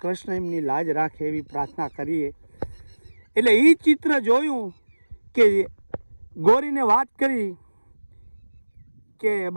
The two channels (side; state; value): both; inverted; correlation -1.00